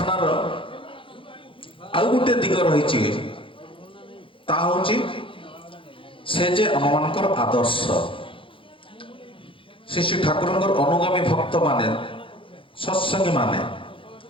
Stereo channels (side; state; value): right; late; 0.25 ms